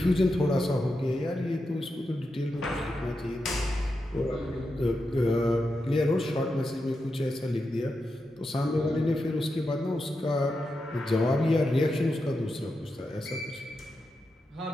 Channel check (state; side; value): normal; both; correlation 0.88